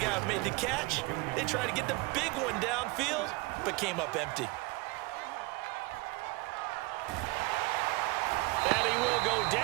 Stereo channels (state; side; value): quieter; left; 23.8 dB